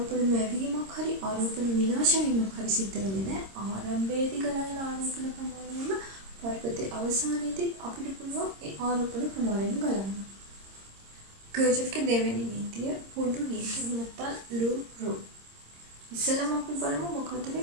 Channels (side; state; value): left; late; 26 ms